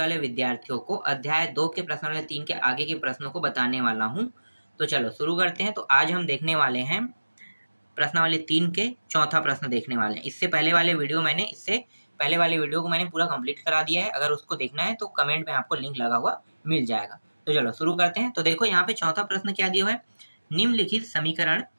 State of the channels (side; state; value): both; inverted; correlation -1.00